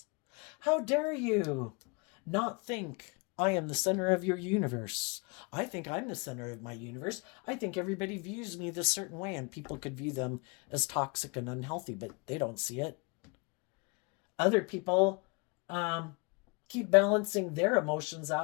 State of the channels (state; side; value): quieter; right; 30.0 dB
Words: How dare you not think I am the center of your universe? I think I'm the center of my universe. I think everybody views me this certain way, and people could view them as toxic and unhealthy, but they don't see it. Other people keep balancing their emotions